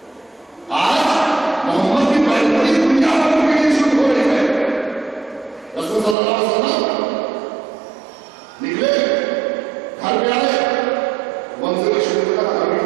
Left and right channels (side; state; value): left; drops out; at 6.2 s